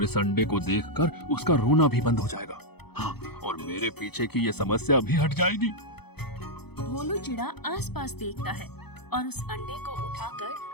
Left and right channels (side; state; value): right; late; 0.97 ms